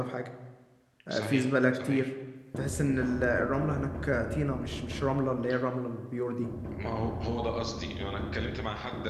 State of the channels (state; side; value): identical; both; correlation 1.00